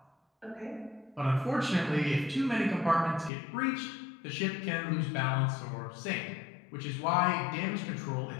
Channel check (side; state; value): right; drops out; at 3.3 s